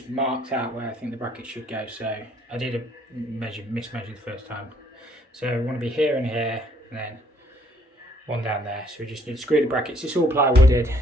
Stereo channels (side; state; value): both; normal; correlation 0.65